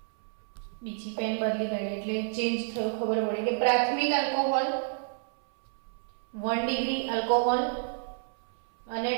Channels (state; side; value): silent; left; 58 dB below the other